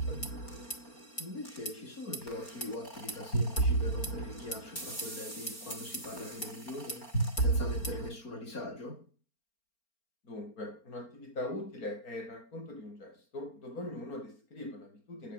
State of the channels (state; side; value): late; right; 4.4 ms